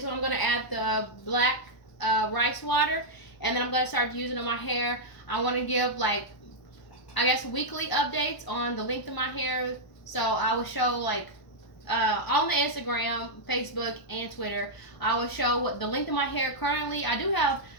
when I'm gonna add the black rice water. And then I'm gonna start using it on my hair. I want to give like, I guess, weekly updates on the length of my hair. So I will show like on the Instagram, Facebook, and Twitter, I will show what the length of my hair currently. I do have,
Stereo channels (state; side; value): late; right; 1.0 ms